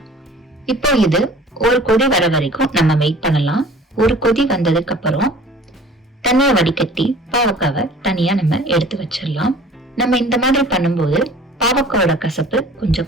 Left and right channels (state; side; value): normal; both; correlation 0.47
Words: இப்போ இது ஒரு கொதி வர வரைக்கும் நம்ம வெயிட் பண்ணலாம். ஒரு கொதி வந்ததுக்கு அப்புறம் தண்ணியை வடிகட்டி பாவக்காவை தனியா நம்ம எடுத்து வச்சிடலாம். நம்ம இந்த மாதிரி பண்ணும்போது பாவக்காவோட கசப்பு